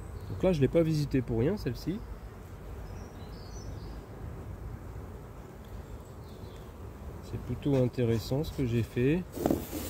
Donc là, je ne l'ai pas visité pour rien, celle-ci. C'est plutôt intéressant ce que j'ai fait.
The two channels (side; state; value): both; identical; correlation 1.00